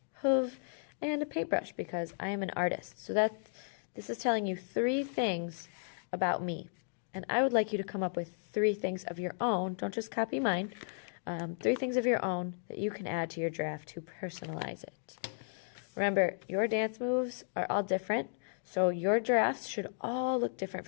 hoof, and a paintbrush because I am an artist. So this is telling you 3 things about me, and I would like you to come up with 3 things of your own. Don't just copy mine. 3 things of your own that you can add to your giraffe to personalize it. Remember, your dance moves are all different, so your giraffes should all look different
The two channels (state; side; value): silent; right; digital silence